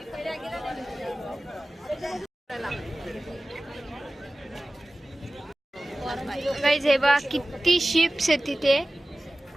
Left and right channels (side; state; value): both; normal; correlation 0.97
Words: गाईज हे बघा किती शिप्स आहेत तिथे,